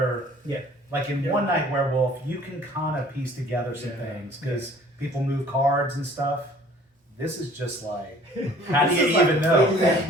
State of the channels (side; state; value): both; normal; correlation 0.53